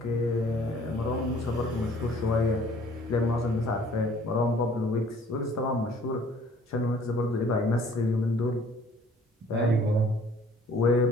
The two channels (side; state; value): both; normal; correlation 0.55